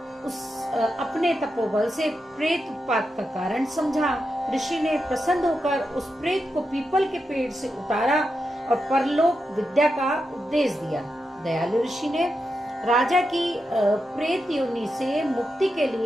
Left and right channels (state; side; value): normal; both; correlation 0.87